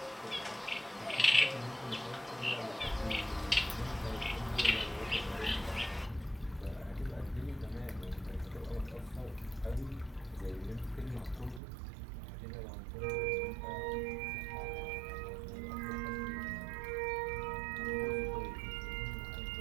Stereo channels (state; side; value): drops out; left; at 11.6 s